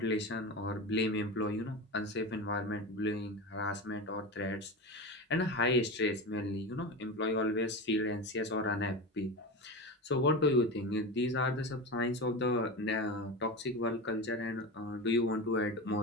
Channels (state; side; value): normal; both; correlation 0.24